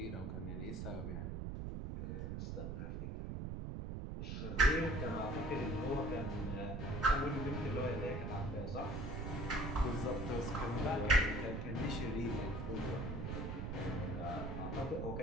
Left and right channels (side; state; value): right; noise; rumble, 4 dB below the sound